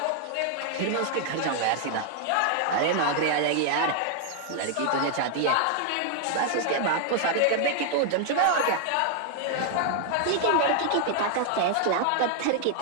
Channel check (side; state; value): both; different; correlation 0.00